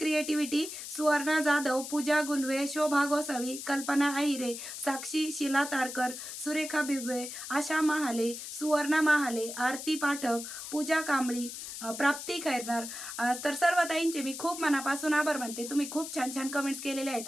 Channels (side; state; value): left; noise; hiss, 9 dB below the sound